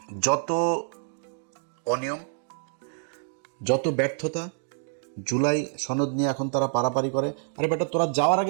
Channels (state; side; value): silent; left; digital silence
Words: যত অনিয়ম, যত ব্যর্থতা, জুলাই সনদ নিয়ে এখন তারা পারাপারি করে। আরে বেটা, তোরা যাওয়ার